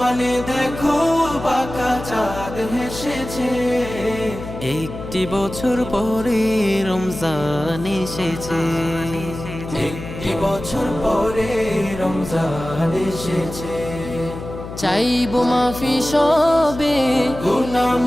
দেখো বাঁকা চাঁদ হেসেছে। একটি বছর পরে রমজান এসেছে। একটি বছর পরে রমজান এসেছে। চাইবো মাফি সবে, গুনাহ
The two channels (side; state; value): left; noise; hum, 10 dB below the sound